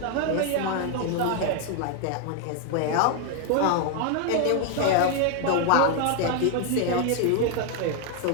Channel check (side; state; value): both; different; correlation 0.00